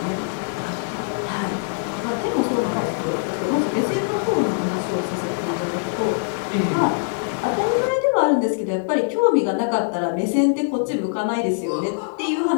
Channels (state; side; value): silent; right; 64 dB below the other